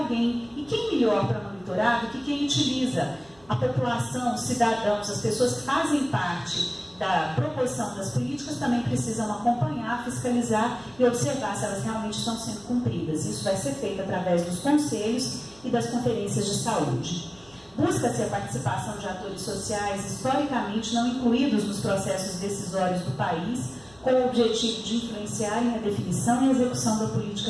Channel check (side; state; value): right; noise; rumble, 28 dB below the sound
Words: E quem melhor para monitorar do que quem utiliza? A população, os cidadãos, as pessoas que fazem parte da proposição das políticas também precisam acompanhar, fiscalizar e observar se elas realmente estão sendo cumpridas. Isso vai ser feito através dos conselhos e das conferências de saúde. Busca-se a participação de atores sociais historicamente não incluídos nos processos decisórios do país, com o objetivo de influenciarem a definição e a execução da